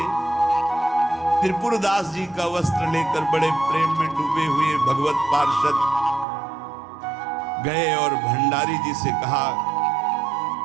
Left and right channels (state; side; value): drops out; left; at 6.2 s